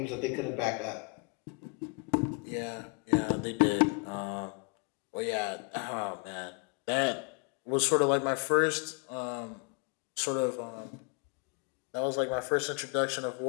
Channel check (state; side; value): quieter; right; 35.8 dB